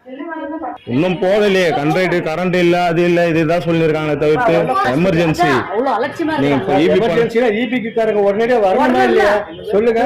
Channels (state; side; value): identical; both; correlation 1.00